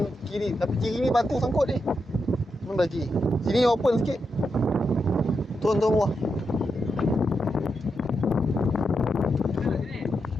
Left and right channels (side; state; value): both; normal; correlation 0.85